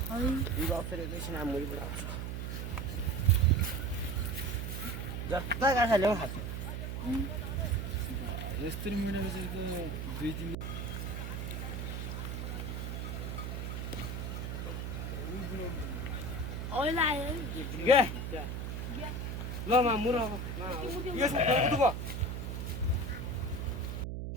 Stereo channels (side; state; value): right; noise; hum, 4 dB below the sound